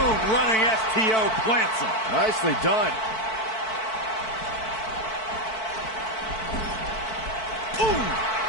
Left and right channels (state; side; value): late; right; 4.5 ms